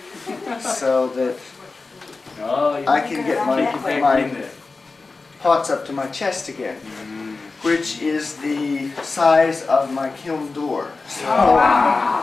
so that I can get my pots up to my chest again, which is the size of my kiln door.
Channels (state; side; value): quieter; right; 3.9 dB